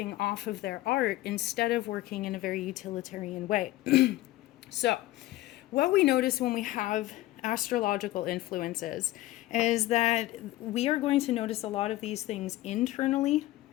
off of their art instead of working in a very utilitarian way. So what we notice when we have astrological influences is that we are going to notice a lot of these things internally,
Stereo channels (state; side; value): quieter; right; 16.6 dB